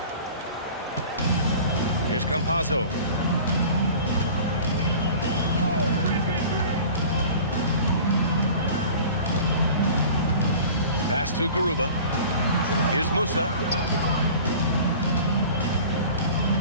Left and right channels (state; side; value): inverted; both; correlation -0.42